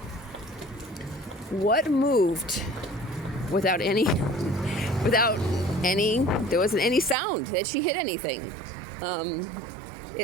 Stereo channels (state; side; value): drops out; left; at 7.2 s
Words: what moved without any, there wasn't any sound that she hit anything.